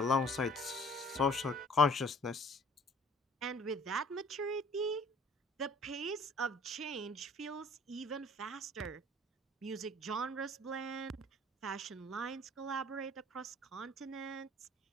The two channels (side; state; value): both; normal; correlation 0.53